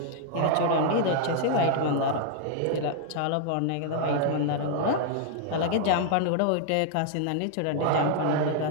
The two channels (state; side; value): different; both; correlation -0.01